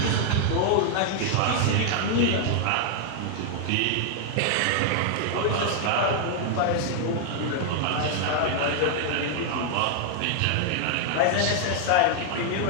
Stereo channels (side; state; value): both; different; correlation 0.00